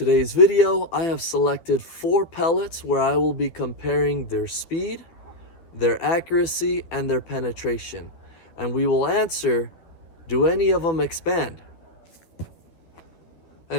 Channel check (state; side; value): late; right; 12 ms